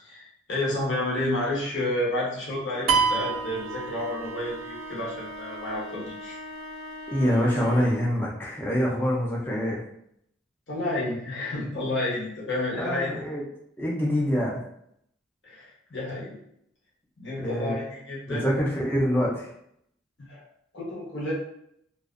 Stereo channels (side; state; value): both; normal; correlation 0.61